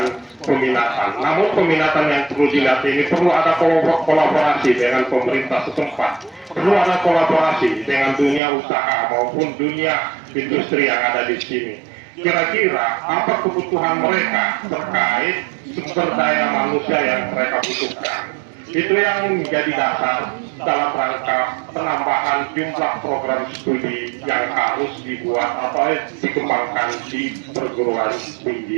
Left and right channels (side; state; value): left; drops out; at 8.4 s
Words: peminatan. Namun peminatan yang perlu dilihat ini perlu ada kolaborasi dengan pemerintah setempat. Perlu ada kolaborasi dengan dunia usaha maupun dunia industri yang ada di sini. Kira-kira apa kebutuhan mereka terkait sumber daya manusia yang mereka butuhkan. Itu yang menjadi dasar dalam rangka penambahan jumlah program studi yang harus dibuat atau dikembangkan di perguruan